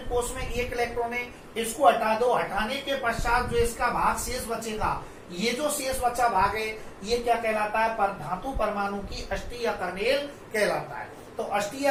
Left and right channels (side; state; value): both; identical; correlation 1.00